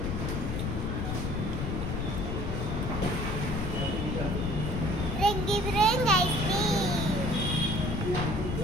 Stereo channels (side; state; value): left; noise; rumble, 2 dB below the sound